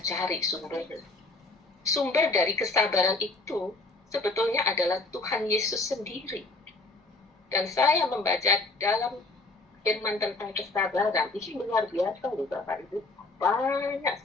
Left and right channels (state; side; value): quieter; right; 3.2 dB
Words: cari sumbernya? Sumber dari kesabaran itu sebetulnya adalah Tuhan Yesus sendiri. Dan saya membaca dalam firman tentang kesabaran, ini luar biasa loh Bapak Ibu, banyak